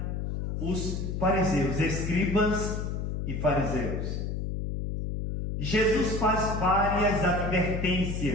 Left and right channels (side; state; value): left; noise; hum, 3 dB below the sound